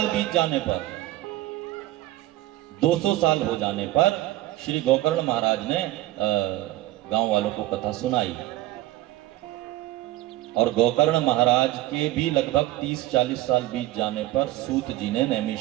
बीत जाने पर, 200 साल हो जाने पर श्री गौकर्ण महाराज ने गांव वालों को कथा सुनाई। और गौकर्ण महाराज के भी लगभग 30-40 साल बीत जाने पर सूत जी ने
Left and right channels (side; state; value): left; quieter; 16.1 dB